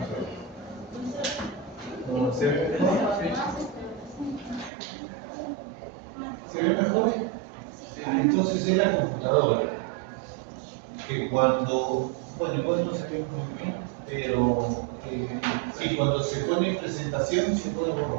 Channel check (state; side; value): drops out; left; at 4.7 s